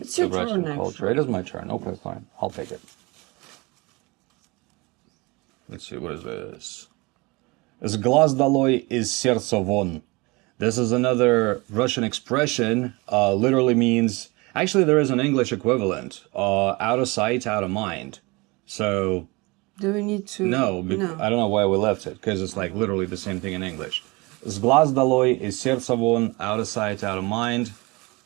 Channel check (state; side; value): quieter; left; 25.2 dB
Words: your the Russian turn, culture. actually. It is my turn. Okay, fine. I'll take it. Let's see, what is this? С глаз долой, из сердца вон. This is another Russian expression. Literally means, actually there is an English equivalent. Out of sight, out of mind. So, Do we need to... no, I don't know why we left it, because it's like literally the same thing in English. С глаз долой, из сердца вон, out of sight, out of mind.